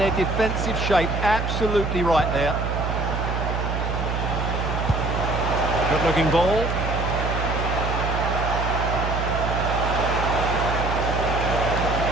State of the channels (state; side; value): noise; right; hum, 2 dB below the sound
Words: defensive shape absolutely right there. Good looking ball.